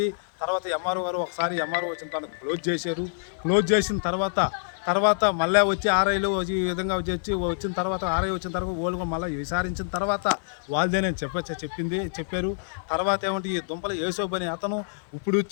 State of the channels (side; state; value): right; silent; 60 dB below the other